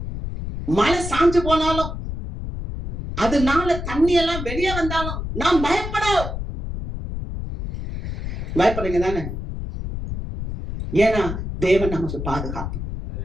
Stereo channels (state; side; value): noise; left; rumble, 6 dB below the sound